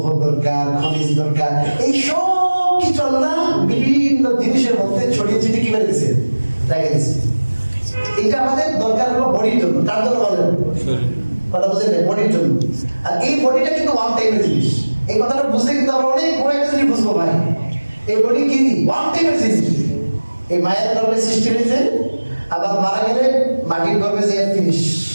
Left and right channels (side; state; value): both; inverted; correlation -1.00